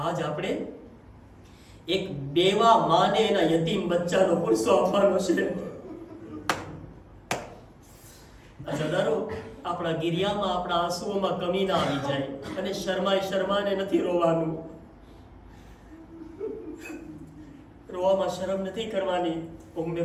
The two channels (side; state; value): both; identical; correlation 1.00